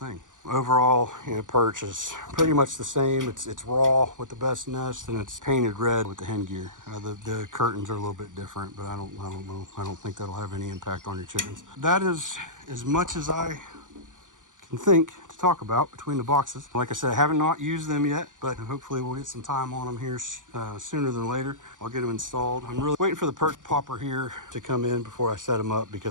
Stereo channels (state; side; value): late; left; 0.87 ms